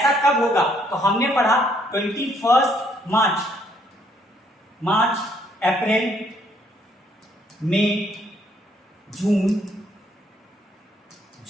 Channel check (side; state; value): both; normal; correlation 0.68